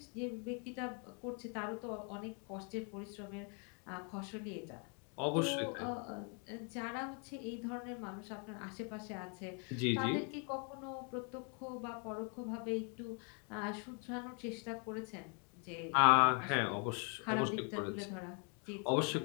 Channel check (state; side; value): quieter; right; 38.0 dB